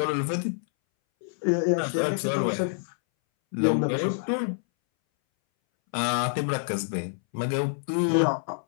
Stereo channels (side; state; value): right; silent; 60 dB below the other